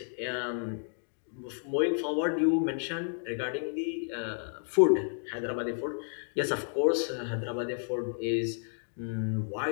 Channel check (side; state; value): right; silent; digital silence